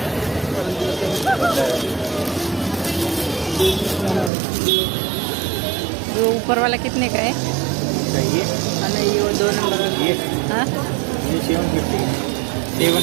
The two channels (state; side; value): drops out; left; at 4.3 s